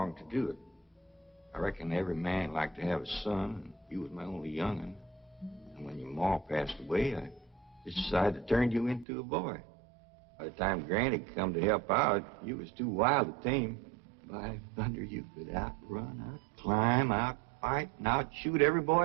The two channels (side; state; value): left; drops out; at 9.1 s